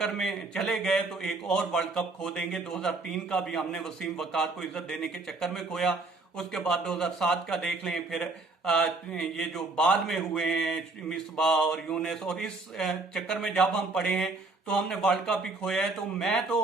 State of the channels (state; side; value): quieter; left; 3.4 dB